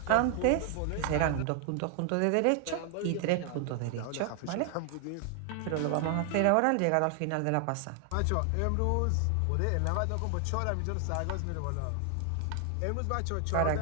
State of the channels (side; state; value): both; different; correlation 0.00